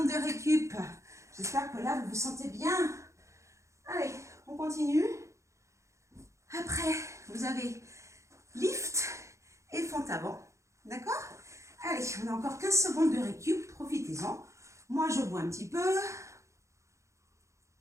de récup. J'espère que là, vous vous sentez bien. Allez, on continue. Après, vous avez lift et fente avant. D'accord? Allez, on a encore 15 secondes de récup. Profitez-en. Moi, je bois un petit peu.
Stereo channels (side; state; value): left; late; 0.14 ms